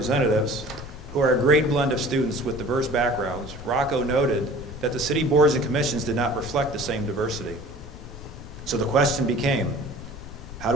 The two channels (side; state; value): left; noise; rumble, 14 dB below the sound